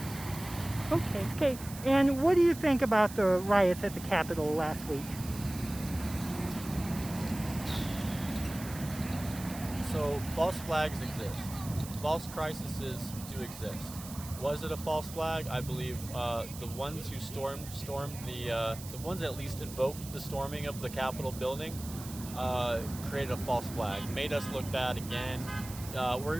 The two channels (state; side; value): noise; right; hiss, 14 dB below the sound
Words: Okay. And what do you think about the riots at the Capitol last week? So false flags exist. False crises do exist. Was it a false flag? I believe the ones who stormed the ones that at least invoked the storming of the Capitol building created a false flag, made us look bad again.